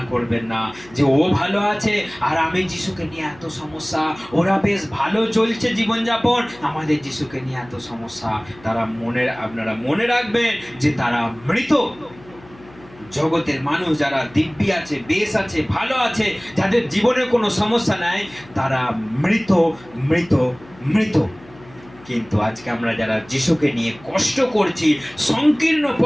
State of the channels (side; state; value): left; noise; hum, 23 dB below the sound